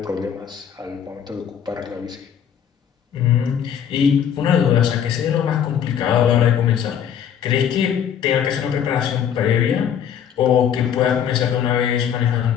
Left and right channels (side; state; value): right; quieter; 8.7 dB